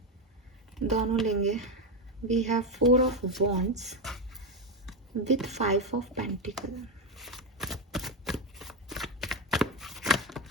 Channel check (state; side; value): normal; both; correlation 0.11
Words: दोनों लेंगे। We have 4 of wands with 5 of Pentacles.